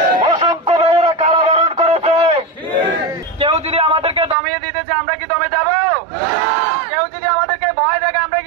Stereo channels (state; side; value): drops out; left; at 4.4 s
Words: অসংখ্য মেয়েরা কারাবরণ করেছে। কেউ যদি আমাদেরকে দমিয়ে দিতে চায় আমরা কি দমে যাব? কেউ যদি আমাদেরকে ভয় দেখে আমরা